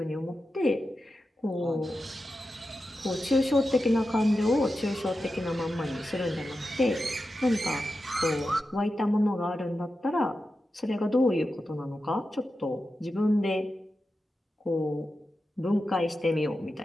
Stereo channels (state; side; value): normal; both; correlation 0.91